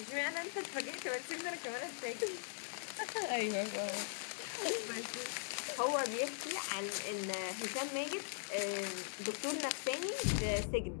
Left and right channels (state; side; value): silent; right; digital silence